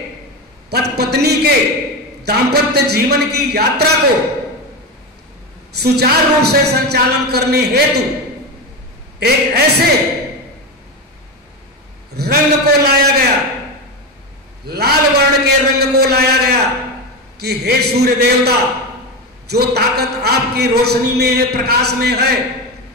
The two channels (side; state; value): both; normal; correlation 0.17